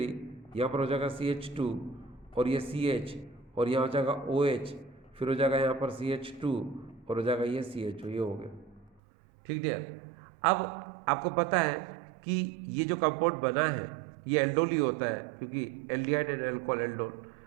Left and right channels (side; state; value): left; drops out; at 9.0 s